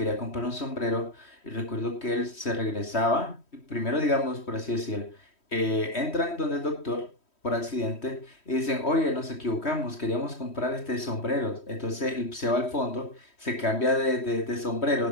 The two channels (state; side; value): late; right; 3.1 ms